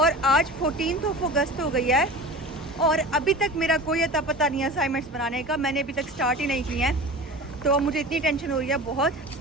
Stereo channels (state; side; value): normal; both; correlation 0.34